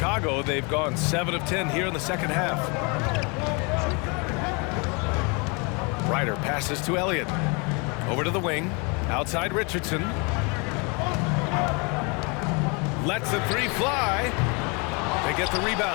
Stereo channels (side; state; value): right; quieter; 31.3 dB